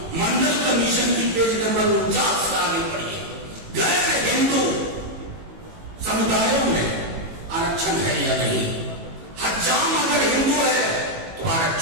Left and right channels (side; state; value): left; late; 18 ms